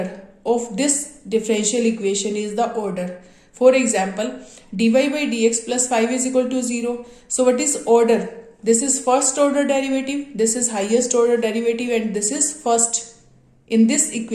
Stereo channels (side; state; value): both; identical; correlation 1.00